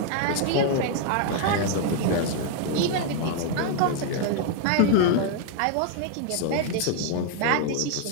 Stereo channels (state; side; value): different; both; correlation 0.00